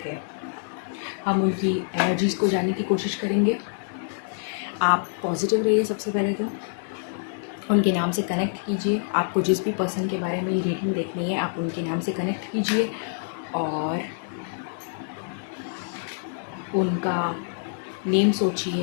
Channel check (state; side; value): silent; right; 61 dB below the other